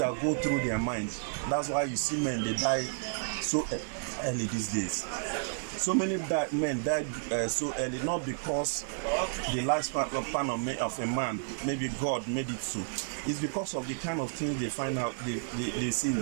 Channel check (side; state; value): left; silent; 55 dB below the other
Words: go through their mind. That's why you see men, they die so early these days. So many men died so early, not because the lifespan of a man, maybe God made it so. It's because of the kind of things they find out, they see in